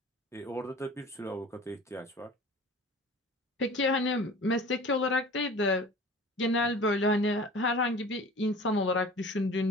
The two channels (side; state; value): both; normal; correlation 0.42